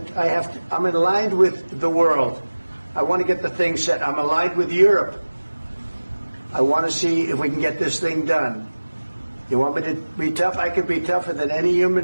I'm aligned with the world. I want to get the thing set. I'm aligned with Europe. I want to see if we can get this thing done. You want me to be tough? I could be tougher than any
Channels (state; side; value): inverted; both; correlation -1.00